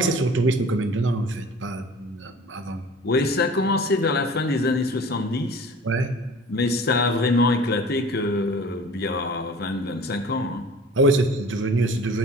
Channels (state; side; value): normal; both; correlation 0.44